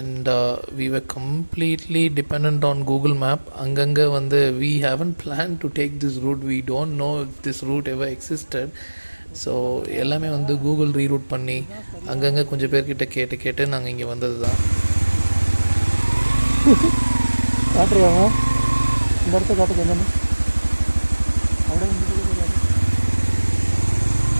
we were completely dependent on Google Map. Anganga we haven't planned to take this route. We don't know if this route ever existed. So எல்லாமே Google reroute பண்ணி அங்கங்கே கொஞ்சம் பேர்கிட்ட கேட்டு நாங்கள் இங்கே வந்தது தான். காட்டுருவாங்க இந்த இடத்த காட்டுக்கு என்னென்னு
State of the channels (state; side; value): inverted; both; correlation -1.00